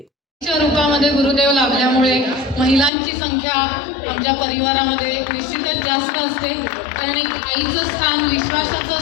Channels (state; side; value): drops out; right; at 2.9 s